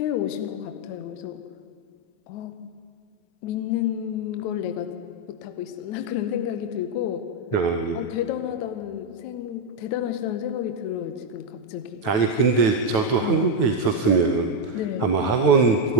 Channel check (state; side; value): late; right; 9.3 ms